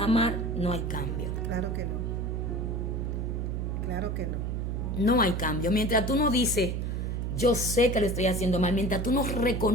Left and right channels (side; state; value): right; noise; hum, 1 dB below the sound